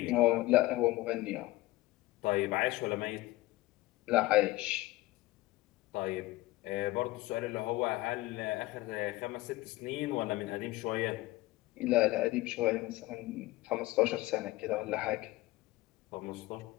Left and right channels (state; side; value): quieter; right; 18.6 dB